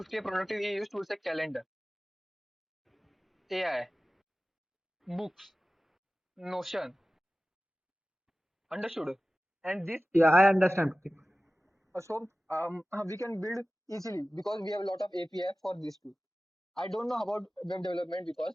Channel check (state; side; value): normal; both; correlation 0.96